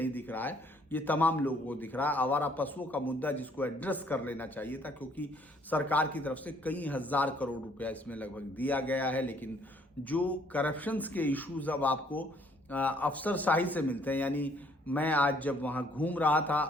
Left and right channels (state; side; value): normal; both; correlation 0.63